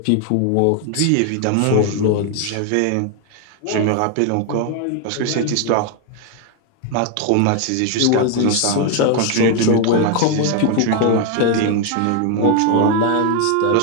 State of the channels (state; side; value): different; both; correlation 0.01